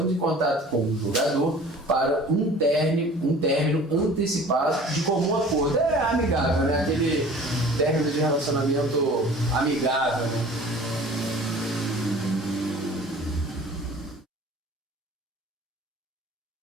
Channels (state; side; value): normal; both; correlation 0.45